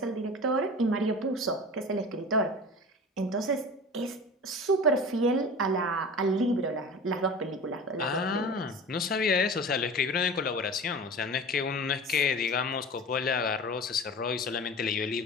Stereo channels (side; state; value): both; normal; correlation 0.35